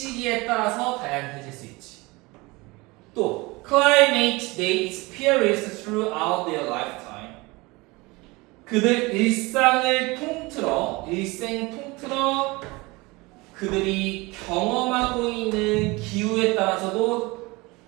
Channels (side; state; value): left; quieter; 23.7 dB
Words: 따라서 다양해질 수 있지. 또 climate they experience throughout their lifetime. 그들 일생 통틀어 그들이 경험하고 있는 기후에 따라서도